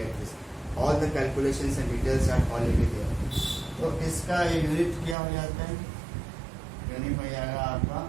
this. All the calculations and details are already there. तो इसका unit क्या हो जाता है? Unit हो जाएगा आपका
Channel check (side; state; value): left; drops out; at 5.2 s